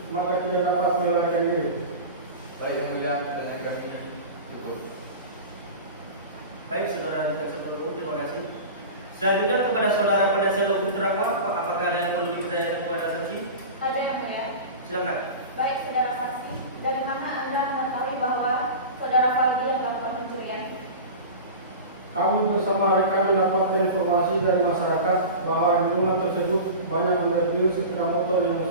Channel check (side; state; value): both; inverted; correlation -0.31